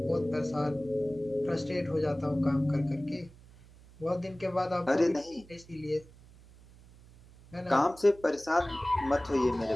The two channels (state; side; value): noise; right; hum, 23 dB below the sound